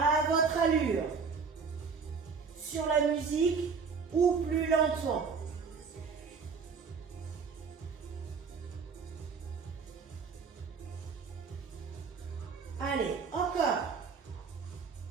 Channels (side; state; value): left; quieter; 5.4 dB